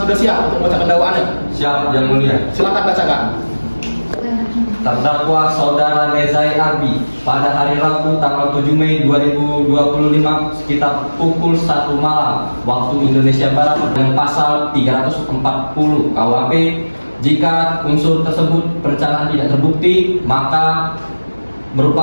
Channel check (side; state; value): both; inverted; correlation -1.00